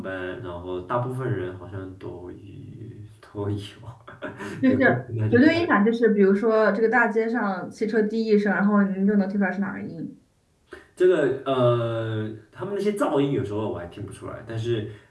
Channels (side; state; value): both; identical; correlation 1.00